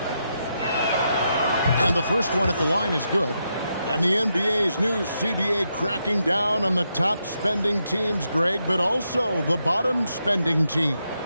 And the first one at the line is good. And the NBA's new CBA cracking down on the top spending teams, Greg, but also the bottom spending teams.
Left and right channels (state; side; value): inverted; both; correlation -0.82